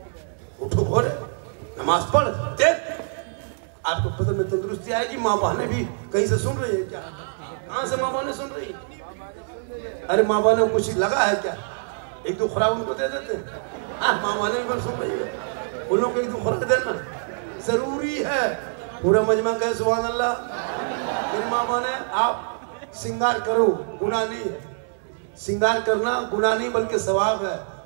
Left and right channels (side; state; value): left; silent; 62 dB below the other